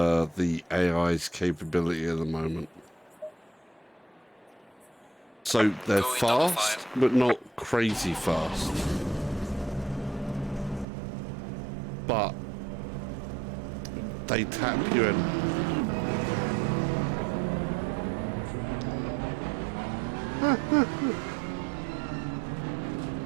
the AI's capability at the moment. So they're fast, but not crazy fast. But they tap you in.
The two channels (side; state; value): left; drops out; at 10.9 s